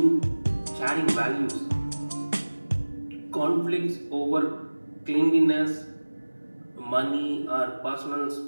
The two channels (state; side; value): inverted; both; correlation -1.00